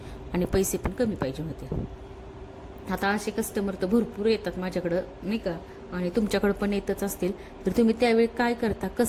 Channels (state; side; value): identical; both; correlation 1.00